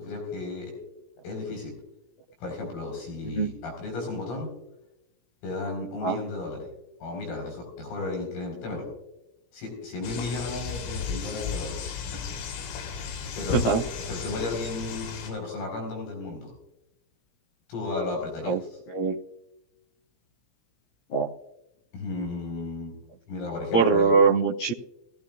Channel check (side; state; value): right; late; 17 ms